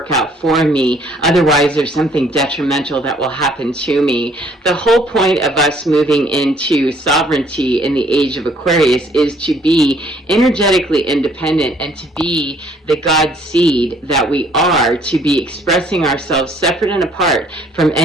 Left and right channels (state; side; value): normal; both; correlation 0.62